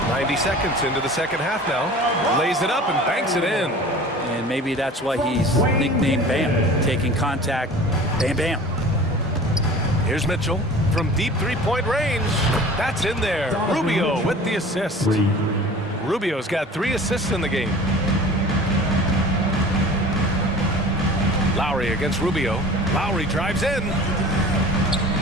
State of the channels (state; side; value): normal; both; correlation 0.42